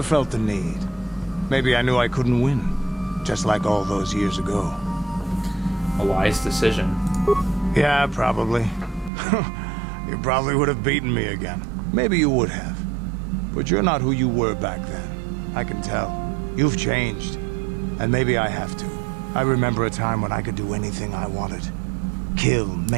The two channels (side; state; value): left; drops out; at 9.1 s